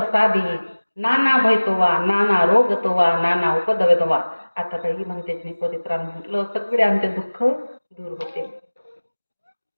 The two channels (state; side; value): inverted; both; correlation -1.00